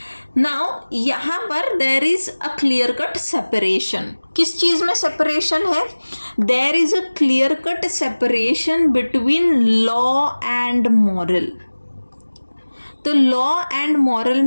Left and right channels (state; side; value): inverted; both; correlation -1.00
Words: नाउ यहाँ पर there is a clear cut separation. किस चीज़ में सेपरेशन है? There is a clear cut separation between law and moral. तो लॉ एंड मॉरल